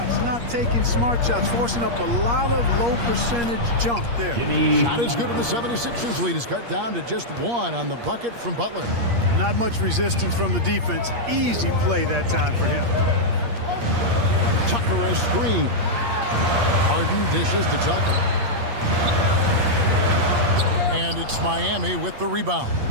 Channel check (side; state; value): left; late; 8.5 ms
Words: not taking smart shots, forcing up a lot of low percentage jump there. Shot is good, and the 76ers lead is cut down to just 1 on the bucket from Butler. Not much resistance from the defense. Easy play that time for him. Tucker a screen. Harden dishes to Tucker. And it's Miami with the rebound.